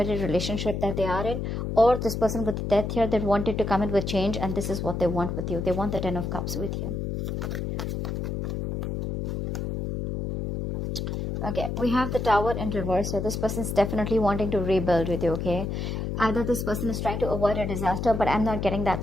relationship that they are in, or this person with the Death here that wanted to come in with change, and this is what they want with you. They want the 10 of Cups with you. Okay, we have the Tower in reverse. So this person is definitely wanting to rebuild with you, okay? Either this person is trying to avoid a disaster, but I'm not getting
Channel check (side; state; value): left; noise; hum, 3 dB below the sound